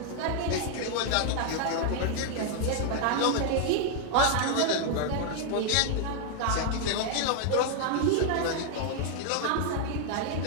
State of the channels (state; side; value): different; both; correlation 0.00